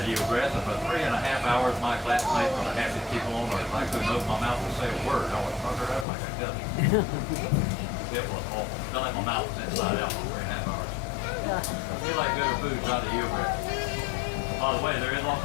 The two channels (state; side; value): drops out; right; at 6.1 s